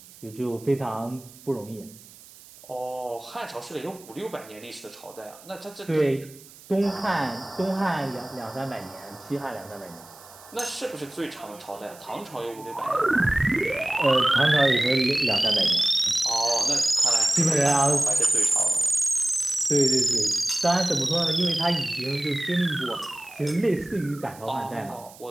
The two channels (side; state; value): right; noise; hiss, 21 dB below the sound